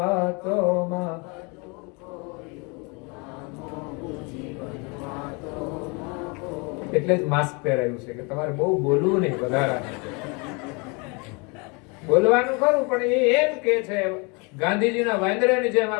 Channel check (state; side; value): quieter; right; 30.5 dB